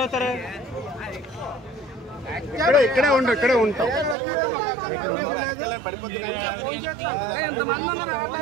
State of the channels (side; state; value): left; drops out; at 4.2 s